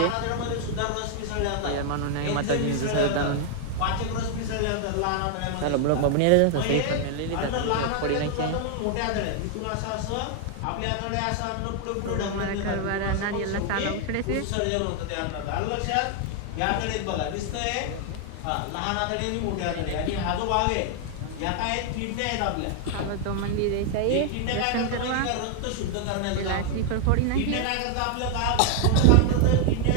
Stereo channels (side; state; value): both; different; correlation 0.00